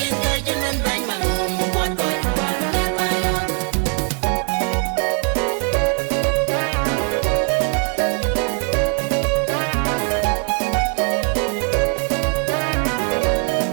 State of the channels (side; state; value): left; quieter; 39.1 dB